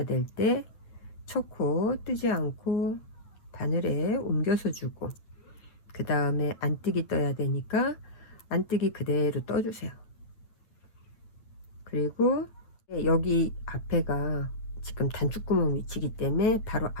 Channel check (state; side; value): late; right; 9.0 ms